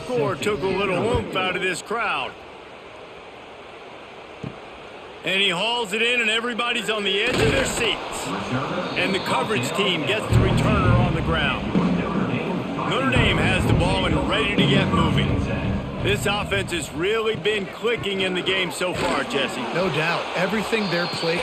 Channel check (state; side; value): identical; both; correlation 1.00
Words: took a little oomph out of this crowd. And he hauls it in, and everybody's on the edge of their seats. And the coverage team gets the returner on the ground. Notre Dame has the ball and ready to get moving. This offense has really been clicking in the game so far, Jesse. No doubt. Everything their play